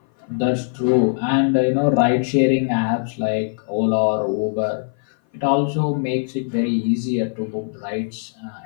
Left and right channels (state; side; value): silent; right; 57 dB below the other